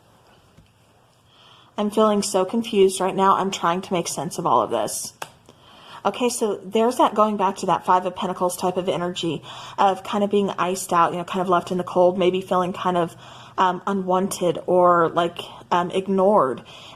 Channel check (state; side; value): identical; both; correlation 1.00